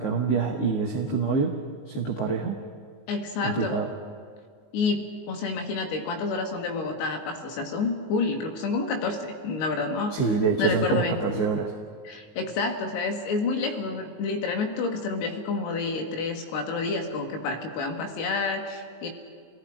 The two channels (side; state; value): right; late; 19 ms